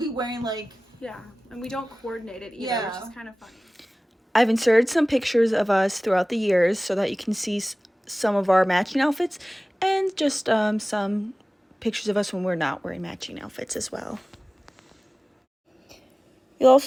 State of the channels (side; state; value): both; normal; correlation 0.98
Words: wearing like and we don't coordinate it either, which is kind of funny. I've inserted some pictures of us throughout the years so that you can see some of our matching outfits and just some pictures of us when we're not wearing matching outfits as well. You'll